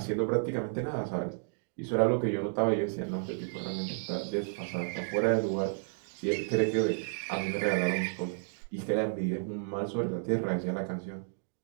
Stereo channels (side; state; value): left; silent; digital silence